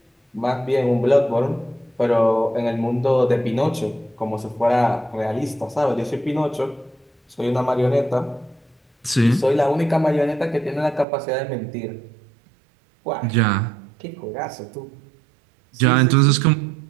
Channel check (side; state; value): left; drops out; at 11.1 s